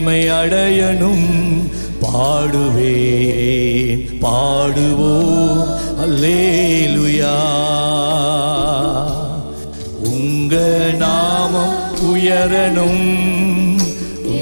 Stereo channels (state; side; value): inverted; both; correlation -1.00